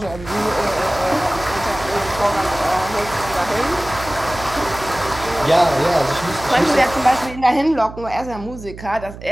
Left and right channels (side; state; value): right; noise; hum, 14 dB below the sound